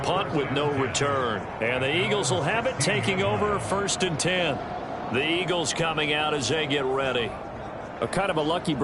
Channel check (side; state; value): both; identical; correlation 1.00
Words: punt with no return. And the Eagles will have it, taking over 1st and 10. The Eagles coming out as they get ready. A kind of a lucky